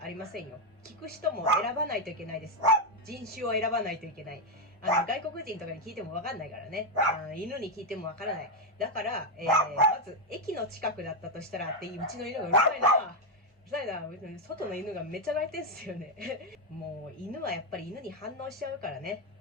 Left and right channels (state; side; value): normal; both; correlation 0.04